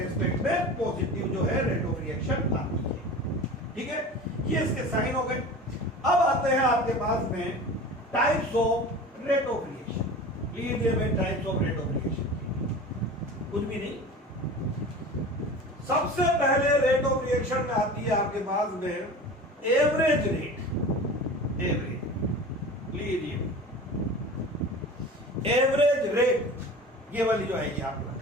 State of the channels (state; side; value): normal; both; correlation 0.36